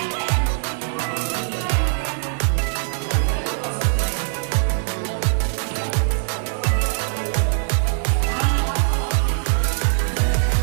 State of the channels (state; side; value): silent; left; digital silence